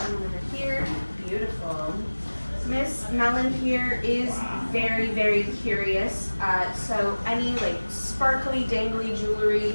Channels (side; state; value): both; inverted; correlation -1.00